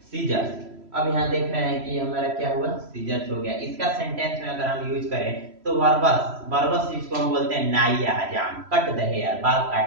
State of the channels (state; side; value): late; left; 3.0 ms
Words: सीजर्स, अब यहाँ देख रहे हैं कि हमारा क्या हुआ, सीजर्स हो गया। इसका सेंटेंस में अगर हम यूज करें तो बर्बस, बर्बस जिसको हम बोलते हैं नाई या हजाम, कट द हेयर, बाल